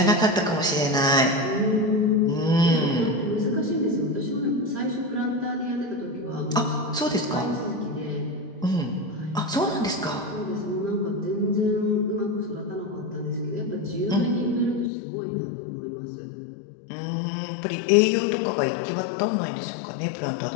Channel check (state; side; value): drops out; right; at 14.9 s